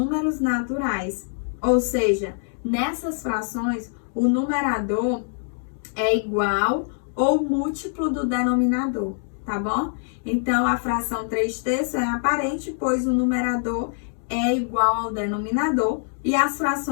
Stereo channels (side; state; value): right; silent; digital silence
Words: naturais. Ou seja, nessas frações, o numerador é igual ou múltiplo do denominador, tá bom? Então, a fração 3/3 é aparente, pois o numerador é igual ao denominador. E as